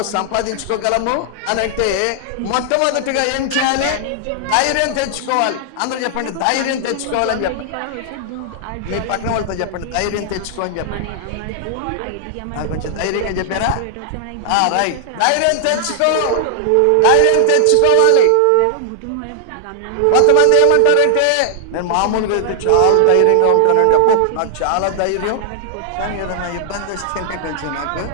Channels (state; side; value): different; both; correlation 0.00